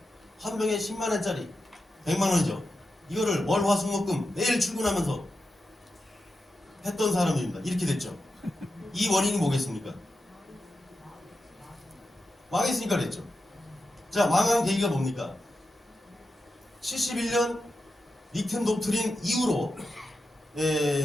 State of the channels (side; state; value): both; normal; correlation 0.90